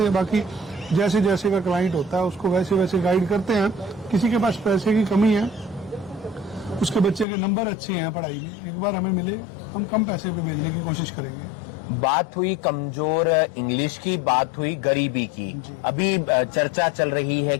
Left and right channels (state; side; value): drops out; right; at 7.2 s